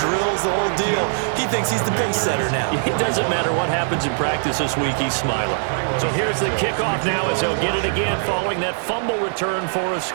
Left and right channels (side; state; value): left; silent; digital silence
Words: the whole deal. He thinks he's the pace setter now. It doesn't matter what happens in practice this week, he's smiling. So here's the kickoff now as he'll get it again following that fumble return for a